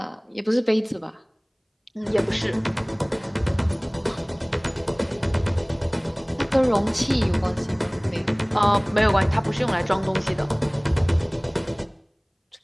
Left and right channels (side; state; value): both; identical; correlation 1.00